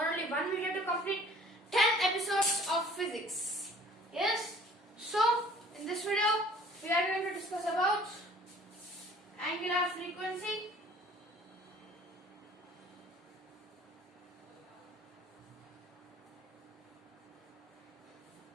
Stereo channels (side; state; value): both; normal; correlation 0.51